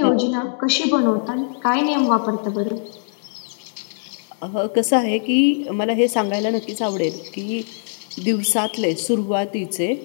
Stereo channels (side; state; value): right; silent; digital silence